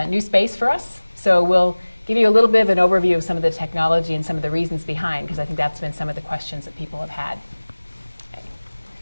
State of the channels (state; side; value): inverted; both; correlation -1.00